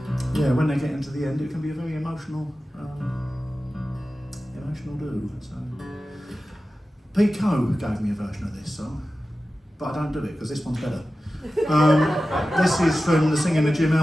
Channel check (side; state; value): both; normal; correlation 0.94